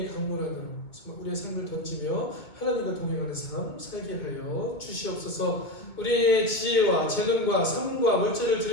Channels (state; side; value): late; right; 2.2 ms